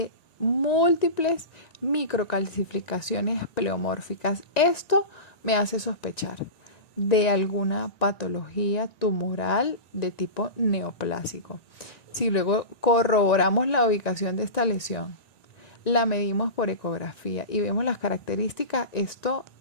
múltiples microcalcificaciones pleomórficas. Esto me hace sospechar de alguna patología tumoral de tipo neoplásico. Si luego corroboramos la ubicación de esta lesión, la medimos por ecografía y vemos las características, esto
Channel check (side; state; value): right; late; 1.9 ms